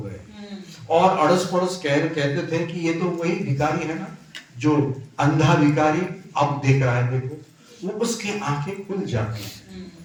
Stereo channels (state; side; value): identical; both; correlation 1.00